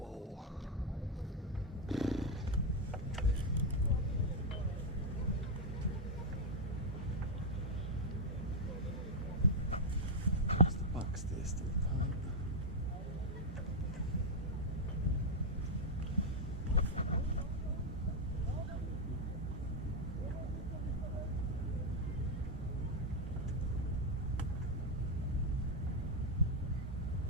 Does the back stay still tight?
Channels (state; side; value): normal; both; correlation 0.03